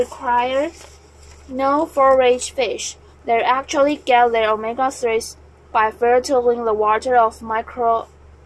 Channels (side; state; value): both; identical; correlation 1.00